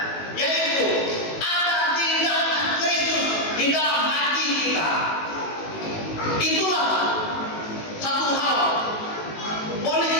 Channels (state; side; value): late; right; 19 ms